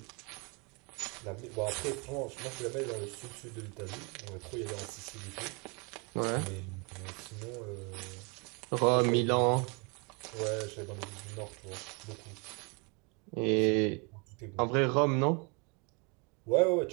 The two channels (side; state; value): left; quieter; 32.7 dB